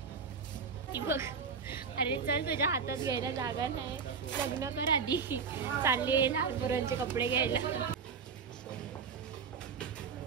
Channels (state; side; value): quieter; left; 5.7 dB